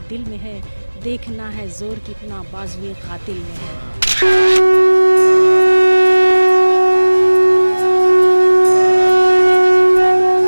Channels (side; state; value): both; inverted; correlation -1.00